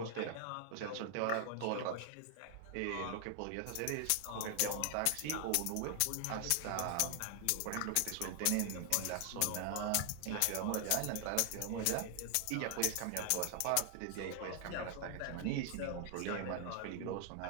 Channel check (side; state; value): both; different; correlation 0.00